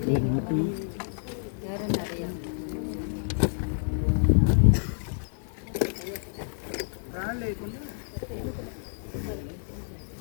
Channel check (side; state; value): right; silent; digital silence